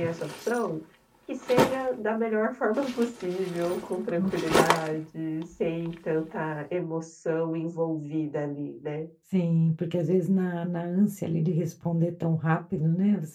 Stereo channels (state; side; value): identical; both; correlation 1.00